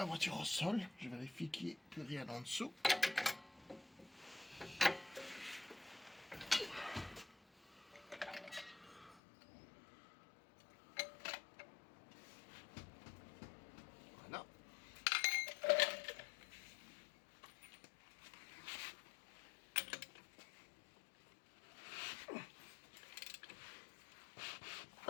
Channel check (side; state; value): right; drops out; at 9.2 s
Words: voiture au sol. Je vérifie qu'il n'y ait plus rien en dessous. Voilà.